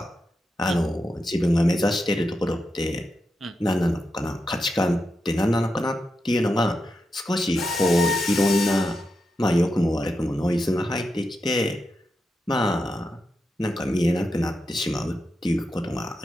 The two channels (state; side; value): normal; both; correlation 0.87